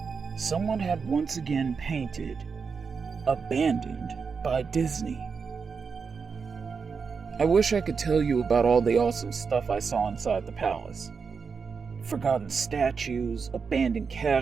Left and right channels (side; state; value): left; quieter; 5.5 dB